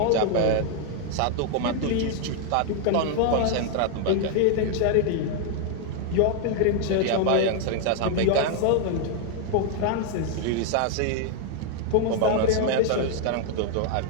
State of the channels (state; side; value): different; both; correlation 0.00